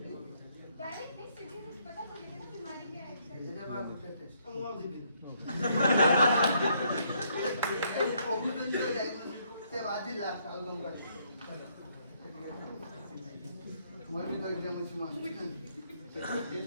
डायरेक्ट नहीं सीटी से पता चलेगा ना बीमारी क्या है। ये जब आप उठे टेस्ट हम वो दी से बाजी लास्ट आउटकम का मोर भी तो एग्जाम अछि मास्टर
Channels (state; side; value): inverted; both; correlation -0.70